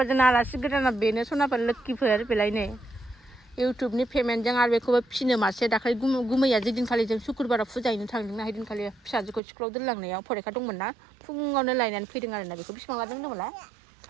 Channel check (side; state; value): left; drops out; at 9.4 s